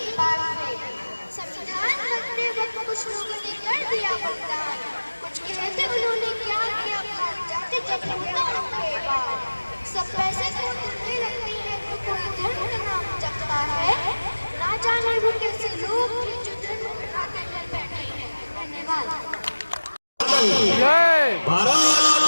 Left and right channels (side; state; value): both; inverted; correlation -1.00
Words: बार फिर। संविधान रखते वक्त कुछ लोगों ने कर दिया बलिदान, कुछ कहते उन्होंने क्या किया भाग जाते जब होता उनके बार। सब पैसे को दिल में रखते हैं तो कोई धर्म का नाम जपता है, ना जाने वो कैसे लोग थे जो धर्म उठा कर बैठे हैं। धन्यवाद। जय भारत